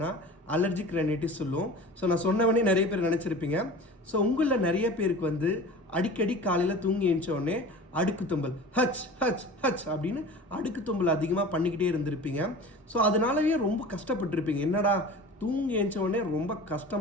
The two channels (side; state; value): both; normal; correlation 0.38